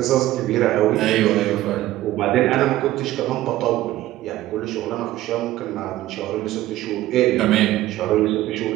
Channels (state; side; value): quieter; left; 15.3 dB